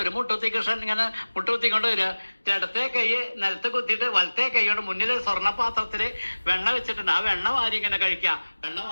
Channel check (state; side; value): inverted; both; correlation -1.00